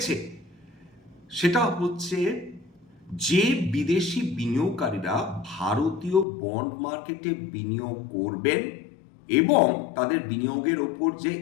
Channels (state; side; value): drops out; right; at 6.2 s